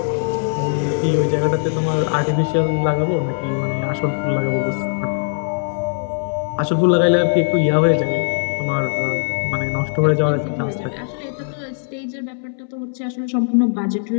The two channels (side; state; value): right; silent; 66 dB below the other